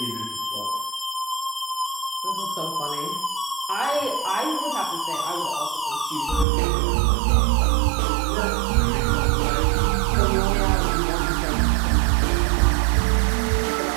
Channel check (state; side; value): drops out; left; at 6.5 s